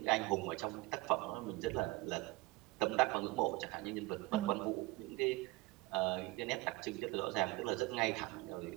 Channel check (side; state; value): left; quieter; 21.2 dB